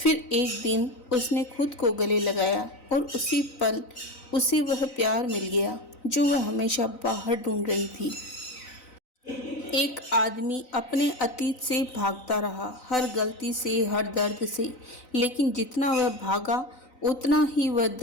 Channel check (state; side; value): late; right; 3.9 ms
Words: एक दिन उसने खुद को गले लगाया और उसी पल उसे वह प्यार मिल गया जो वह हमेशा बाहर ढूंढ रही थी। एक आदमी अपने अतीत से भागता रहा, हर गलती से, हर दर्द से। लेकिन जितना वह भागा उतना ही वह